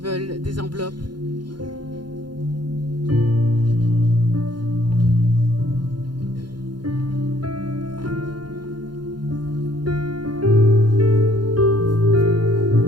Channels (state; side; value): late; left; 0.71 ms